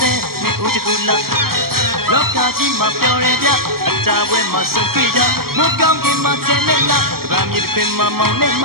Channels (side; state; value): left; late; 0.93 ms